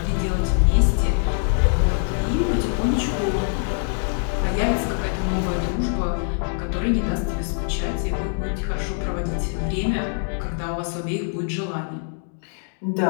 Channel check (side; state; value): right; silent; 56 dB below the other